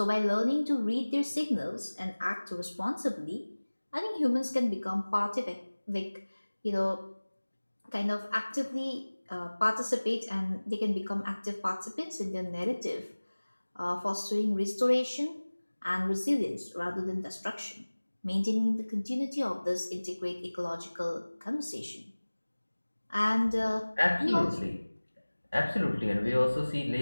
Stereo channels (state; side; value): inverted; both; correlation -1.00